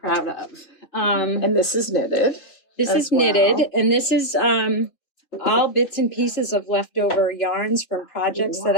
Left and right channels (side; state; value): right; late; 3.1 ms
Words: of. And this is knitted. This is knitted, and this is all bits and pieces of leftover yarns from projects that